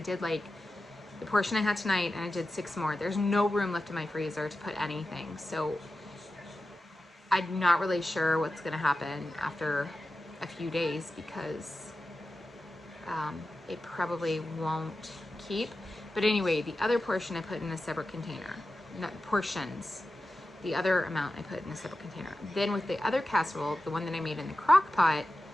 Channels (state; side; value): normal; both; correlation 0.93